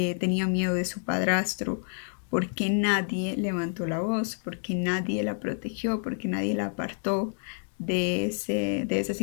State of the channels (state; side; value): silent; right; digital silence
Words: tenía miedo de su padrastro, porque nadie levantó la voz, porque nadie la protegió, porque nadie la apartó de esa